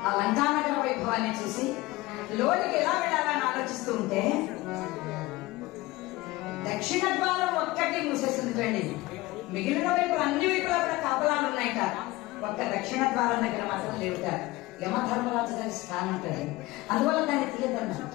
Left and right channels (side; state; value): right; quieter; 19.8 dB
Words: ఆ లంకానగర వైభవాన్ని చూసి లోనికి ఎలా వెళ్ళాలని ఆలోచిస్తూ ఉంటే దక్షిణ ద్వారం ఒక్కటి మూసేసిందండి. మిగిలిన వైపులు అన్ని వైపులా కూడా కాపలాలు ఉన్నాయట. ఒక్క దక్షిణ ద్వారం దగ్గర మాత్రం లేవుట. యమధర్మరాజు గారి స్థానం ఉంటుంది, అందువల్ల దాన్ని తీయదన్నారు.